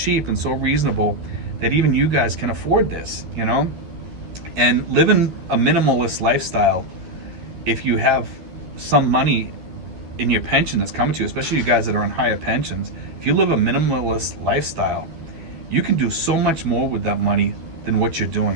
and so reasonable that even you guys can afford this, you know? And living a minimalist lifestyle, if you have some money in your pension that's coming to you, especially you guys that are on higher pensions, if you live a minimalist lifestyle, you can do so much more with that money than what you're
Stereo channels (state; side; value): late; left; 12 ms